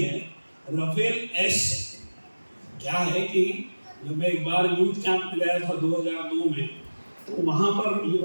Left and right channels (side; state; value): both; inverted; correlation -1.00